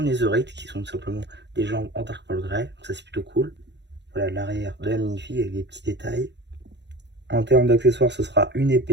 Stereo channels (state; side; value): late; left; 0.51 ms